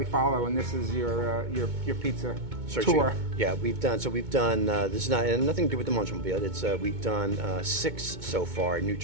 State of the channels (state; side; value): late; left; 2.2 ms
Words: follow, and this is your pizza tour. Yeah, we've done. This is nothing to do with the Munch Mobile. It's we've done 6 so far. New